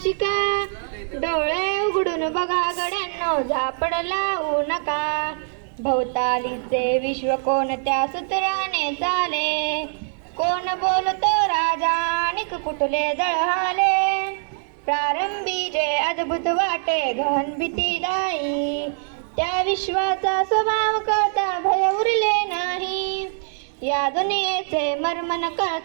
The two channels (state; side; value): silent; left; digital silence